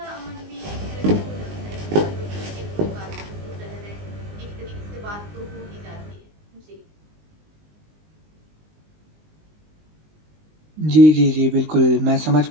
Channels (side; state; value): left; late; 19 ms